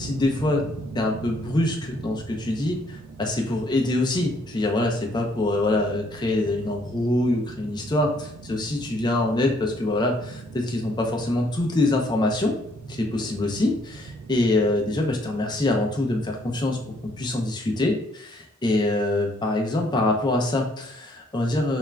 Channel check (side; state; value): both; normal; correlation 0.66